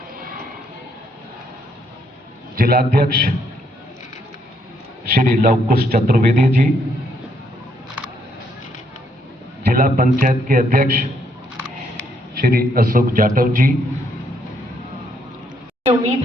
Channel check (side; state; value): both; normal; correlation 0.72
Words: जिलाध्यक्ष श्री लवकुश चतुर्वेदी जी, जिला पंचायत के अध्यक्ष श्री अशोक जाटव जी। उम्मीद